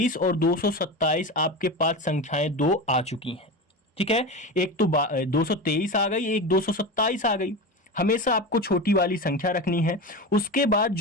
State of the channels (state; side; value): normal; both; correlation 0.24